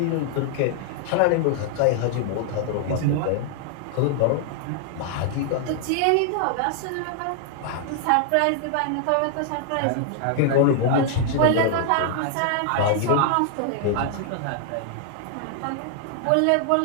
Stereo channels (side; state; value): both; different; correlation 0.00